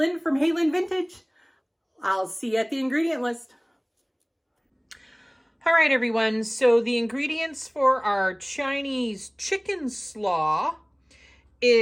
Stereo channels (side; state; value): both; identical; correlation 1.00